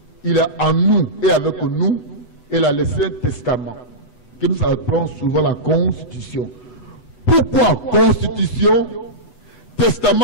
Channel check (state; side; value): late; right; 8.1 ms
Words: il est en nous et avec nous, et il a laissé un testament, que nous appelons souvent la Constitution. Pourquoi Constitution?